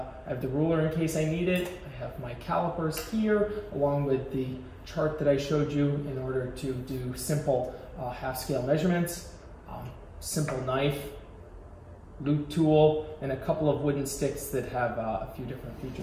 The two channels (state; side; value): identical; both; correlation 1.00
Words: I have the ruler in case I need it. I have my calipers here, along with the chart that I showed you in order to do simple half-scale measurements, simple knife, loop tool, and a couple of wooden sticks that have a few different